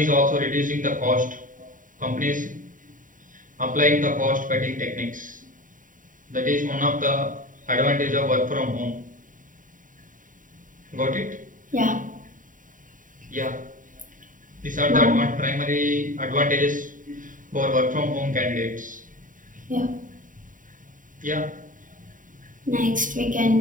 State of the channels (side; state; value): left; late; 0.38 ms